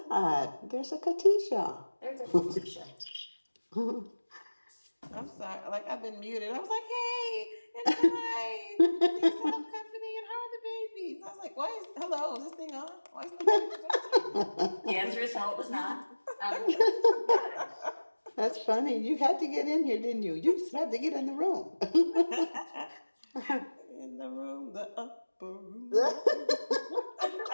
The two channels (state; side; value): inverted; both; correlation -1.00